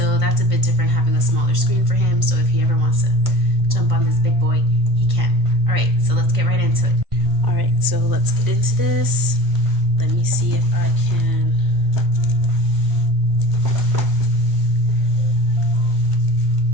that's a bit different, having a smaller screen for him. So if he ever wants to jump on this big boy, he can. All right, so let's get right into it. All right, so let's get into this. Let me see if I can.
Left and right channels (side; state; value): left; late; 1.5 ms